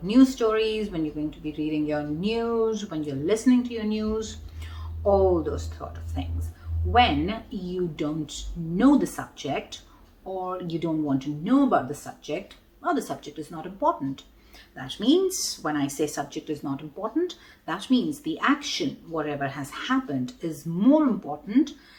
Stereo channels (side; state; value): both; identical; correlation 1.00